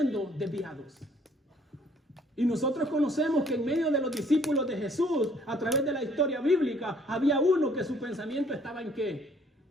desviados. Y nosotros conocemos que en medio de los discípulos de Jesús, a través de la historia bíblica, había uno que su pensamiento estaba ¿en qué?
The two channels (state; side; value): normal; both; correlation 0.61